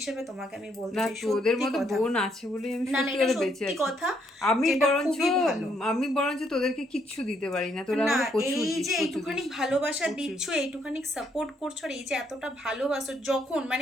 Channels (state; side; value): normal; both; correlation 0.72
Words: তোমাকে আমি বলতে না, চাই, তোদের সত্যি মতো কথা। বোন আছে বলেই আমি না না, সত্যি এটা করে বেঁচে সত্যি আছি। কথা, আমি যেটা বরঞ্চ খুবই ভালো। আমি বরঞ্চ তোদেরকে কিচ্ছু দিতে পারি না, তোরা না, আমাকে প্রচুর এই দিস, যে প্রচুর এইটুখানি দিস, ভালোবাসা প্রচুর। দিচ্ছ, এইটুখানি সাপোর্ট করছো, আর এই যে এতটা ভালোবাসো, যখন